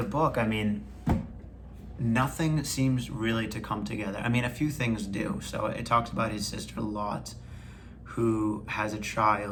book, nothing seems really to come together. A few things do. So it talks about his sister Lot, who has a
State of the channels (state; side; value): identical; both; correlation 1.00